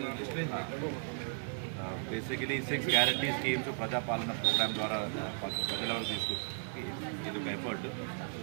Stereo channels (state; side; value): silent; left; digital silence